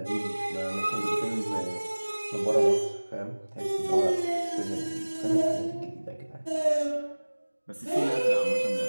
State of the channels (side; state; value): both; inverted; correlation -1.00